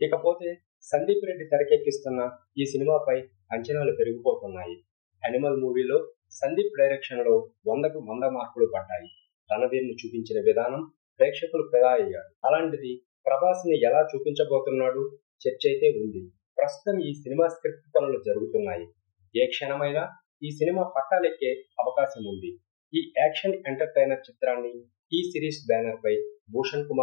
ఇకపోతే సందీప్ రెడ్డి తెరకెక్కిస్తున్న ఈ సినిమాపై అంచనాలు పెరిగిపోతున్నాయి. అనిమల్ మూవీలో సందీప్ డైరెక్షన్ లో 100కు 100 మార్కులు పడ్డాయి. రణధీర్ ను చూపించిన విధానం ప్రేక్షకులు ఫిదా అయ్యారు. అలాంటిది ప్రభాస్ ని ఎలా చూపించబోతున్నాడు చర్చ అయితే ఉంది. ప్రస్తుతం ఈ సినిమా స్క్రిప్ట్ పనులు జరుగుతున్నాయి. ఏ క్షణమైనా ఈ సినిమా పట్టాలెక్కే అవకాశం ఉంది. ఈ యాక్షన్ ఎంటర్టైనర్ చిత్రాన్ని టీ సిరీస్ బ్యానర్ పై భూషణ్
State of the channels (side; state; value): right; silent; digital silence